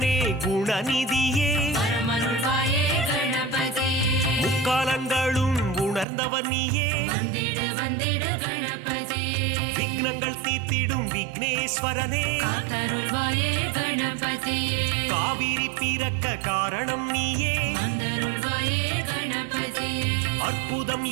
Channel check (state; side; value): drops out; left; at 6.1 s